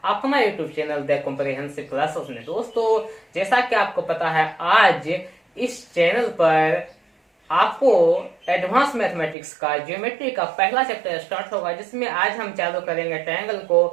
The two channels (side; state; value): left; drops out; at 9.3 s